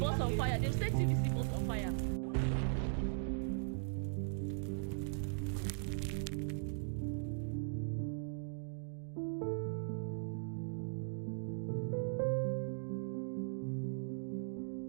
on fire. They've set TVC bus on fire.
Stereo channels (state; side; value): silent; left; digital silence